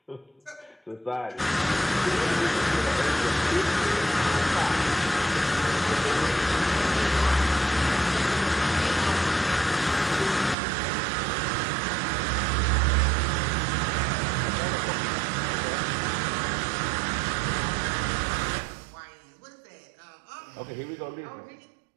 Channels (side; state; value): left; drops out; at 10.6 s